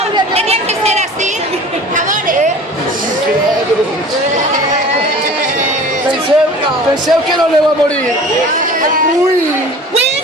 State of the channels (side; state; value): both; normal; correlation 0.42